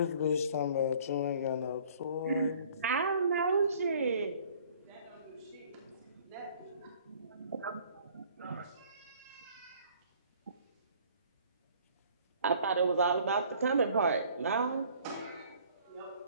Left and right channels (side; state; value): both; inverted; correlation -0.55